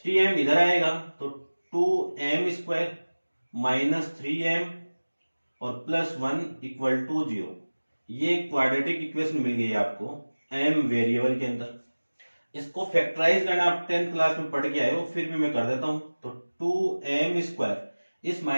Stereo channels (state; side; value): inverted; both; correlation -1.00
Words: 3m इधर आएगा तो 2m स्क्वायर माइनस 3m और प्लस 1 इक्वल टू 0, ये क्वाड्रेटिक इक्वेशन मिल गई आपको m वेरिएबल के अंदर। इसको फैक्टराइज करना आप 10th क्लास में पढ़ के आए हो, फिर भी मैं कर देता हूं। तो 2m स्क्वायर, इस